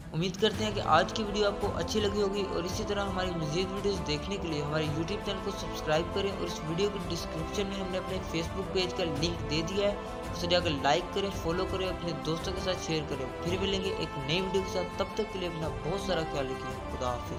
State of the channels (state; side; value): identical; both; correlation 1.00